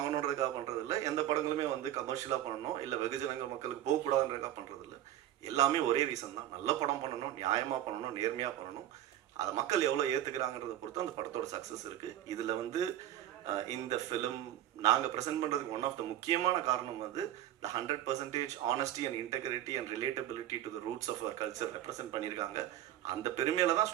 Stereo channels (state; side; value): quieter; left; 12.4 dB